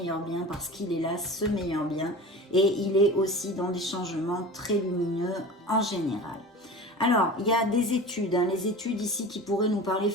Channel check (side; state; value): both; normal; correlation 0.35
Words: bien, parce qu'il est là, ce meilleur bien. Et il est aussi dans des changements très lumineux en général. Alors, il y a des études, hein, les études ici qui pourraient nous parler